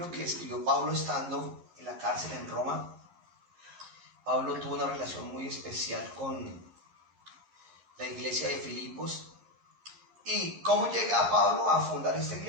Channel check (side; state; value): left; late; 11 ms